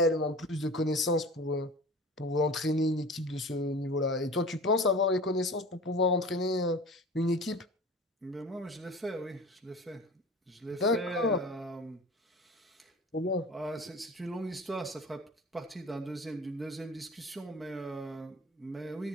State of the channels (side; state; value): both; normal; correlation 0.38